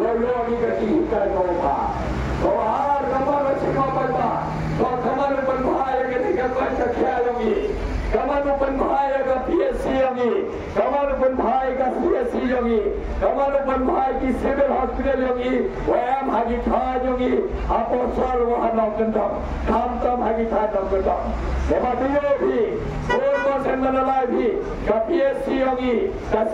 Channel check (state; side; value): identical; both; correlation 1.00